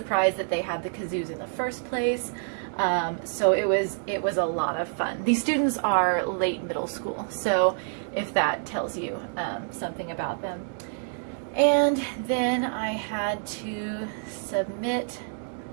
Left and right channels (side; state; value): left; silent; digital silence